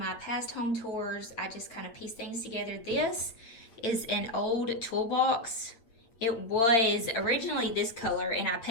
past home tours, I just kind of piece things together. This is an old toolbox. It was originally this color and I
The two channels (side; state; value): right; late; 8.8 ms